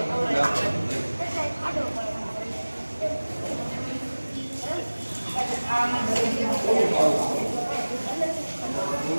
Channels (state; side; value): inverted; both; correlation -1.00